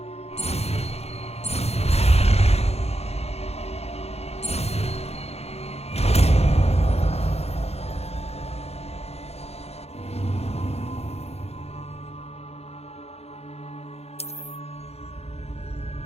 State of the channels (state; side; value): late; right; 0.30 ms